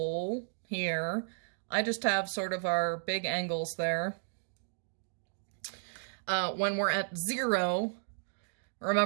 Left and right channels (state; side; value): silent; left; digital silence